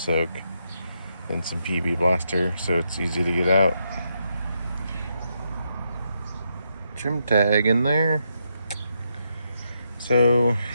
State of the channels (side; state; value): both; inverted; correlation -0.81